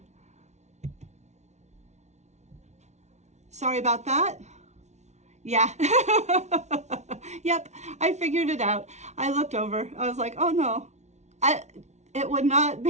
Sorry about that. Yeah. Yep, I figured it out. I looked over. I was like, oh no. It would not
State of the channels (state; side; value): late; left; 0.32 ms